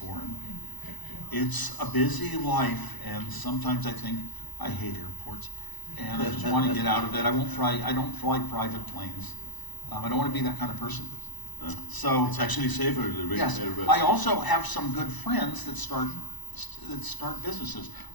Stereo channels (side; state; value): right; late; 1.0 ms